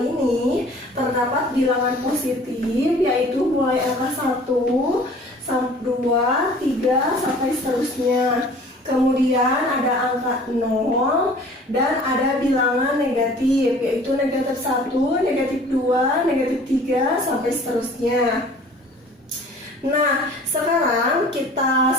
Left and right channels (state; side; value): normal; both; correlation 0.48